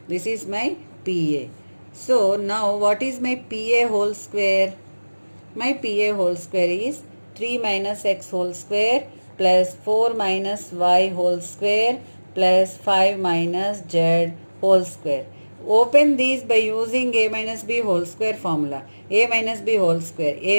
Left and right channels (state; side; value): inverted; both; correlation -1.00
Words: This is my PA. So now what is my PA whole square? My PA whole square is 3 minus x whole square plus 4 minus y whole square plus 5 minus z whole square. Open these by using a minus b whole square formula. A minus b whole square,